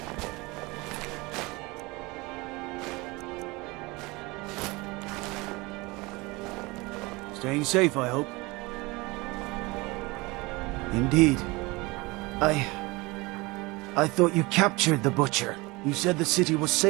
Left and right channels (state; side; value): quieter; left; 23.9 dB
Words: Staying safe, I hope. Indeed. I thought you captured the Butcher. You said the city was